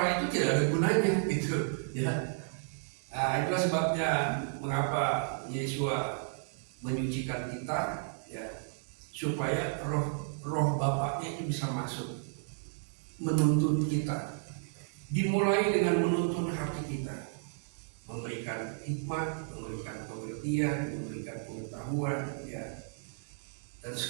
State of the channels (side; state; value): left; silent; digital silence